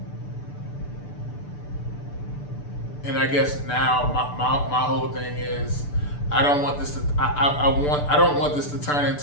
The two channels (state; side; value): late; right; 6.8 ms